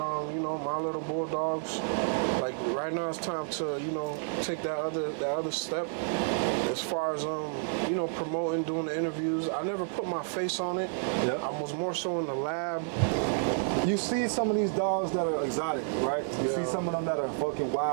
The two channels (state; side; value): silent; left; digital silence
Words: you know, My Little Bulldogs. Like right now, it's time to, you know, take that other step. As far as you know, promoting, doing the interviews, I never put my face on it. Yeah. I was more so in the lab. You see some of these dogs that are exotic, right? You see some of them that are fucking